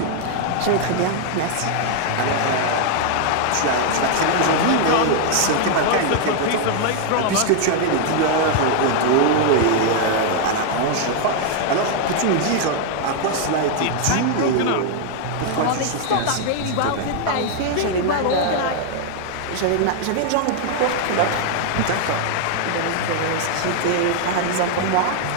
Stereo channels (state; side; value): different; both; correlation 0.00